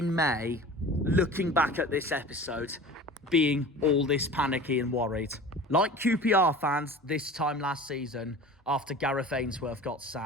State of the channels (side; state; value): both; normal; correlation 0.39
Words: May, looking back at this episode, being all this panicky and worried. Like QPR fans this time last season after Gareth Ainsworth got